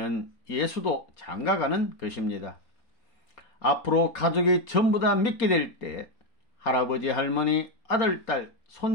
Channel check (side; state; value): right; late; 4.2 ms